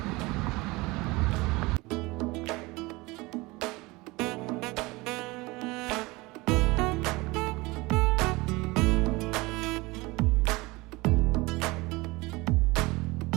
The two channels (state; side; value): quieter; left; 22.8 dB